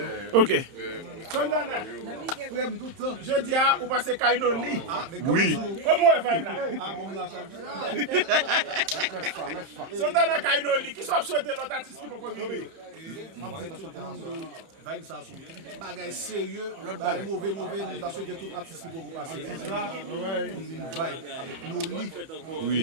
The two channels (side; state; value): left; late; 31 ms